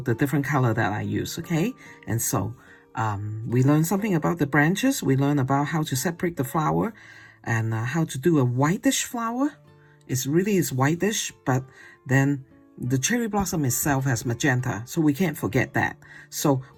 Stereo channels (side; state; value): both; identical; correlation 1.00